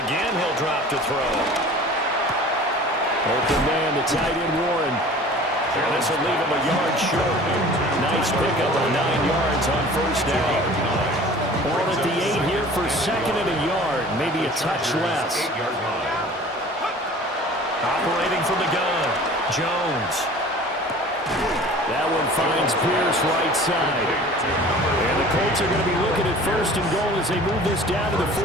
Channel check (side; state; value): both; normal; correlation 0.44